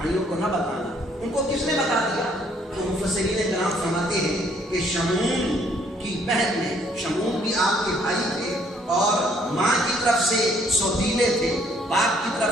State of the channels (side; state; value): both; normal; correlation 0.65